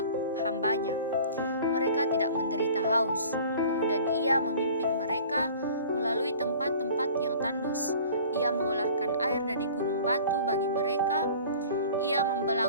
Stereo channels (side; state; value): both; inverted; correlation -0.46